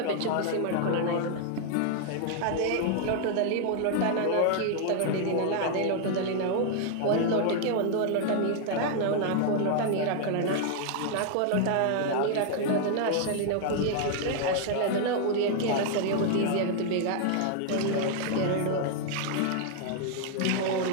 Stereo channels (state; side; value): different; both; correlation 0.00